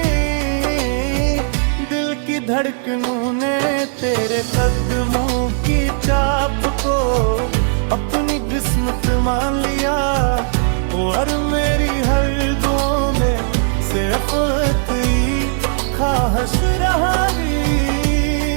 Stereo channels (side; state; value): left; silent; 68 dB below the other